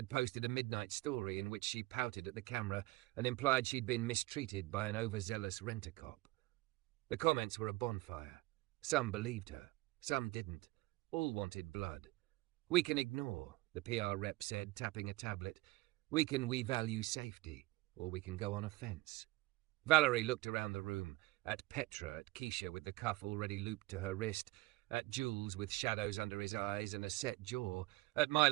posted a midnight story in which she pouted at the camera and implied she'd been mistreated by an overzealous rent-a-cop. The comments were a bonfire. Some believed her, some didn't. All wanted blood. "We can ignore," the PR rep said, tapping a tablet. "We value safety, or we can go on offence." Valerie looked around the room, at Petra, at Keisha with the cuff already looped to her wrist, at Jules with shadows under his eyes and a set jaw, at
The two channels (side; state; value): left; quieter; 20.7 dB